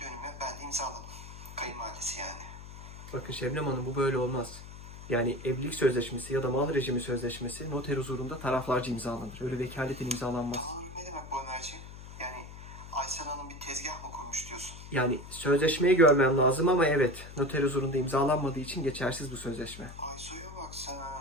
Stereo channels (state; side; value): noise; left; hum, 14 dB below the sound